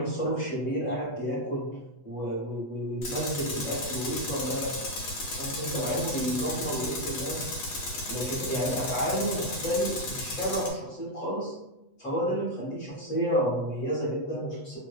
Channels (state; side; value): late; right; 8.0 ms